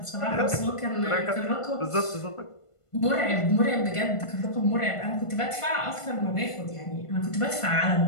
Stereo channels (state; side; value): late; right; 1.5 ms